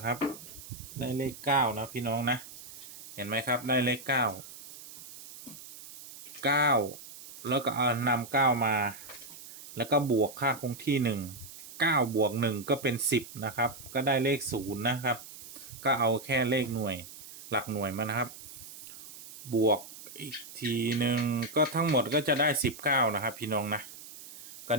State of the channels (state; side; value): noise; right; hiss, 15 dB below the sound